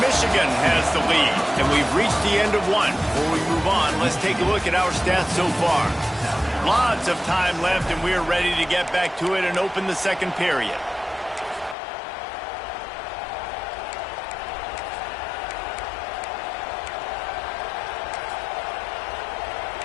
has the lead. And we've reached the end of one. Before we move on, let's take a look at our stats so far. Lots of time left, and we're ready to get back to it and open the second period.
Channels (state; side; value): drops out; right; at 11.8 s